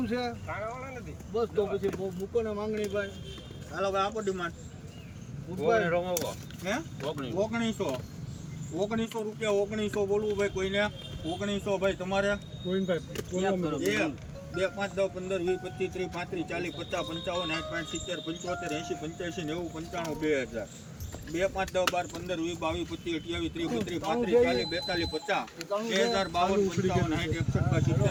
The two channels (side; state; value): both; identical; correlation 1.00